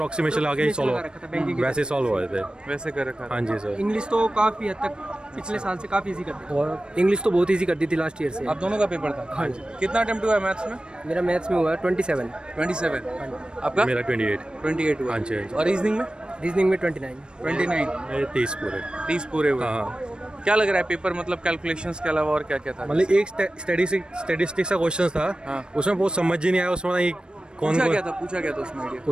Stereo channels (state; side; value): late; left; 0.052 ms